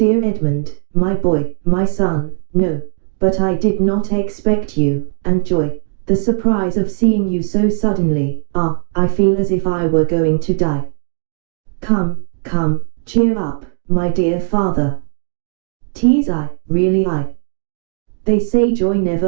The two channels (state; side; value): silent; left; digital silence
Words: Edmund, my boy, my son, no, but I did not expect you, and joy, the surprise of seeing you so suddenly, I feel as if I were going to die. Come, come, cheer up, my dear father. 'Tis I, really I. They say joy